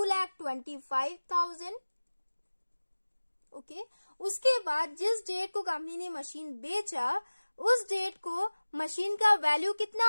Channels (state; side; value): inverted; both; correlation -1.00